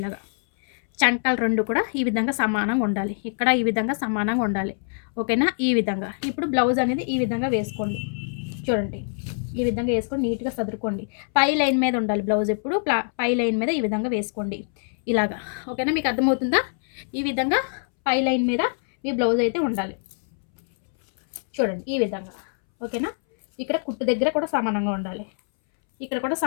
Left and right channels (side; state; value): right; silent; 62 dB below the other